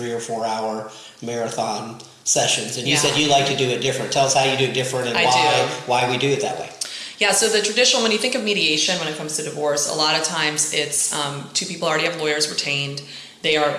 or 4 hour marathon sessions, and you said you like to do it different. Tell us how you do it different and why we do it that way. Yeah, so the traditional, when you think of mediation when it comes to divorce, a lot of times it's two people already have lawyers retained. They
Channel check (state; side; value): identical; both; correlation 1.00